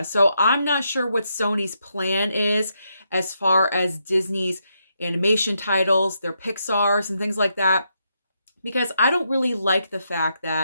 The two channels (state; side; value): inverted; both; correlation -0.80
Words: So I'm not sure what Sony's plan is as far as Disney's animation titles, their Pixars and things like that. Because I don't really like the fact